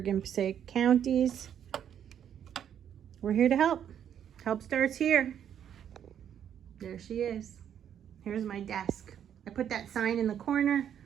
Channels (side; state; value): left; quieter; 9.3 dB